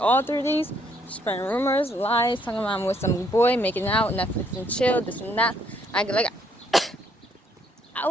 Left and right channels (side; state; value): both; normal; correlation 0.69